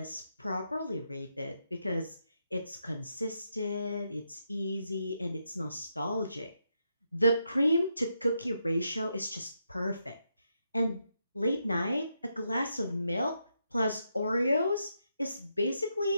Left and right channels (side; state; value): both; inverted; correlation -0.82